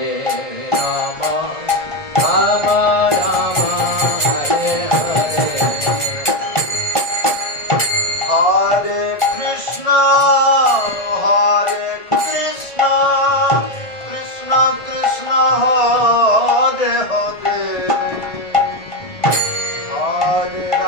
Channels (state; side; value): late; right; 1.7 ms